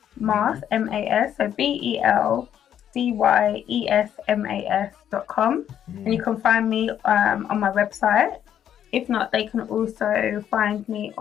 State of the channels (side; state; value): right; quieter; 9.9 dB